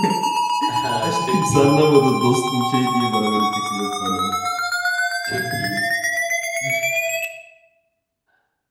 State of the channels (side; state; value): both; identical; correlation 1.00